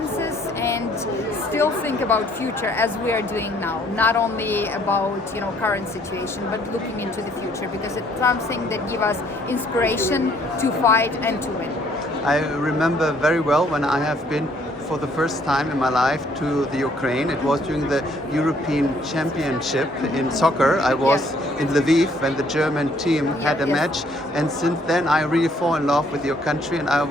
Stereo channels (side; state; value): both; normal; correlation 0.64